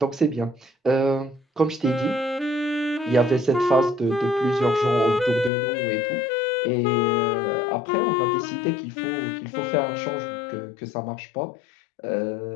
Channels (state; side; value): drops out; right; at 5.5 s